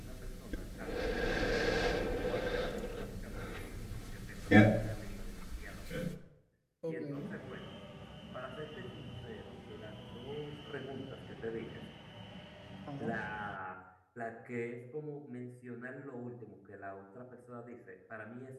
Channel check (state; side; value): identical; both; correlation 1.00